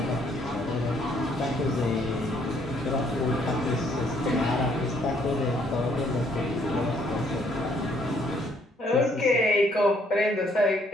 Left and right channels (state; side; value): normal; both; correlation 0.67